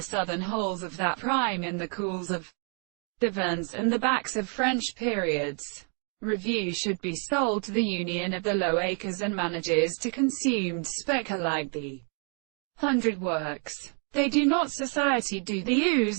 southern holes of that prime in the cools of the Verns and the backs of French periods, review should be sold to the Union of the Low Acres and manages to consumed specker like the 100 works. They do not society do the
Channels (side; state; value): left; quieter; 39.0 dB